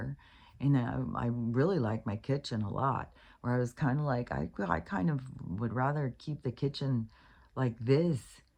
And I really like my kitchen a lot, where I was kind of like, I kind of would rather keep the kitchen like this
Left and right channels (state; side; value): identical; both; correlation 1.00